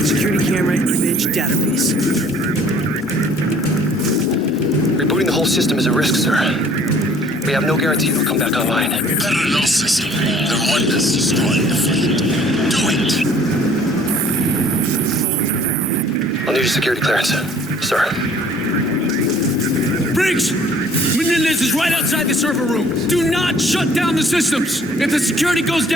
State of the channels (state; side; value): normal; both; correlation 0.55